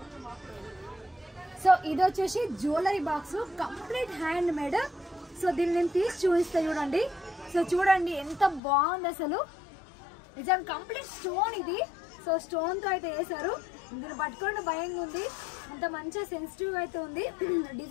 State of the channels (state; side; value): drops out; right; at 8.6 s